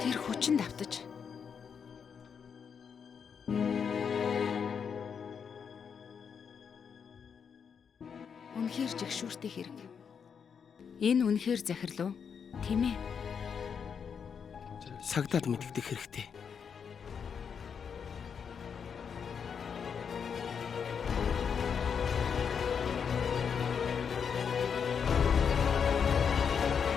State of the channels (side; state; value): right; quieter; 6.8 dB